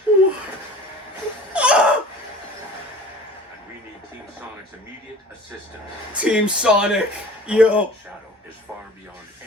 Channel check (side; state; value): both; normal; correlation 0.44